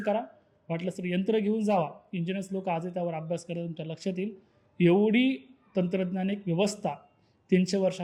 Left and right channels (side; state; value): both; identical; correlation 1.00